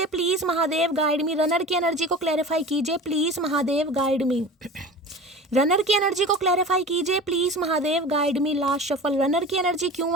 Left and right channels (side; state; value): both; normal; correlation 0.35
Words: please Mahadev, guide me. Runner की एनर्जी को क्लैरिफाई कीजिए please Mahadev, guide me. Runner की एनर्जी को क्लैरिफाई कीजिए please Mahadev, guide me. Last shuffle. Runner की एनर्जी